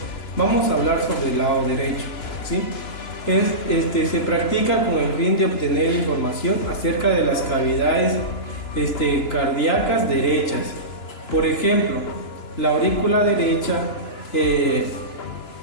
Vamos a hablar sobre el lado derecho, ¿sí? Se practica con el fin de obtener información acerca de las cavidades cardíacas derechas. Por ejemplo, la aurícula derecha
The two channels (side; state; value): right; late; 2.9 ms